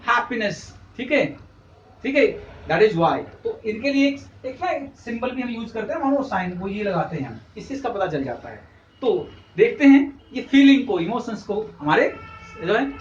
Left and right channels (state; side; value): identical; both; correlation 1.00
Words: happiness, ठीक है, ठीक है, दैट इज वाई। तो इनके लिए एक ना सिंबल भी हम यूज करते हैं, मानो साइन, वो ये लगाते हैं हम, इससे इसका पता चल जाता है। तो देखते हैं, ये फीलिंग को, इमोशंस को, हमारे जो है